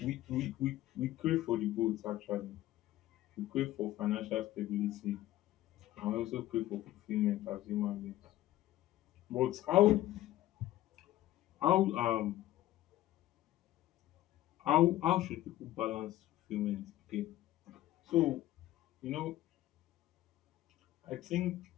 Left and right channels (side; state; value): right; quieter; 14.7 dB